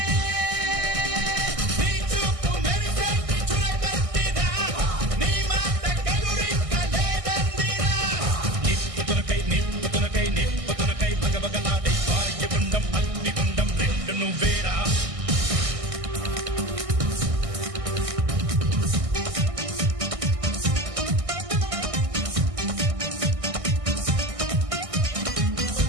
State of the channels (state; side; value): late; left; 1.6 ms